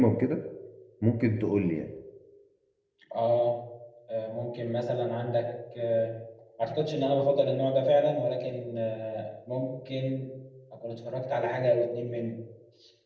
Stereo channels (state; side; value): identical; both; correlation 1.00